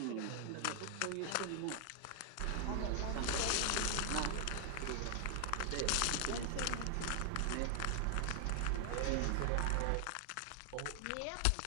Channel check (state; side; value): different; both; correlation 0.00